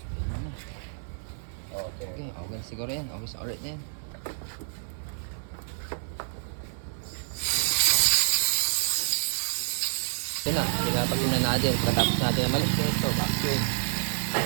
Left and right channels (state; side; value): silent; left; 59 dB below the other